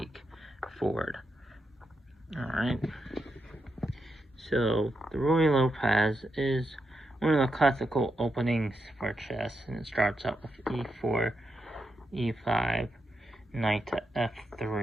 forward. Alright. So the Ruy Lopez is one of the classical openings for chess, and it starts out with e4, e5, knight to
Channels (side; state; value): both; normal; correlation 0.85